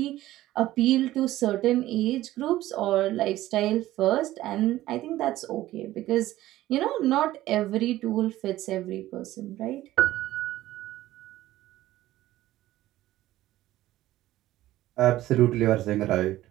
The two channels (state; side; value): quieter; left; 15.3 dB